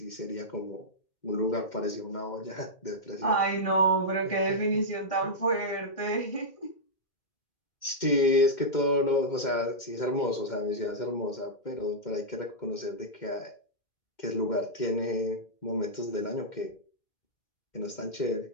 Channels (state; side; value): late; right; 2.1 ms